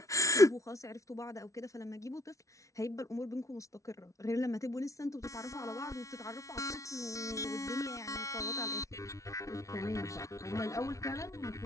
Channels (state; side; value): late; right; 0.15 ms